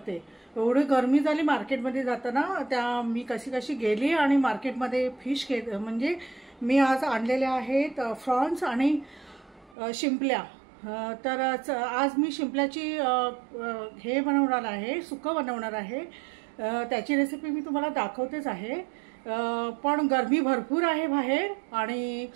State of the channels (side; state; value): left; drops out; at 9.8 s